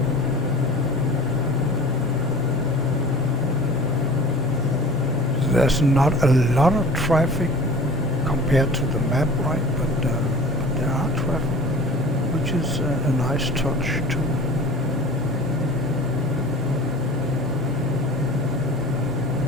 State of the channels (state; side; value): normal; both; correlation 0.42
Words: There's not a lot of traffic compared to the map, right? But there are traffic, which is a nice touch too.